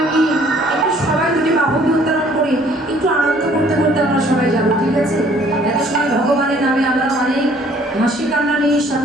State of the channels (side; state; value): both; normal; correlation 0.58